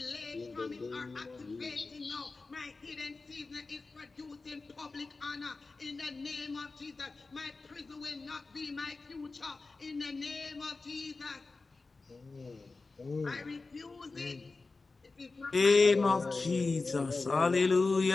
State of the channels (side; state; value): right; quieter; 3.8 dB